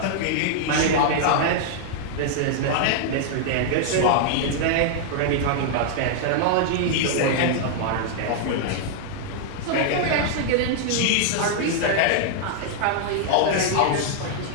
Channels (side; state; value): both; different; correlation -0.01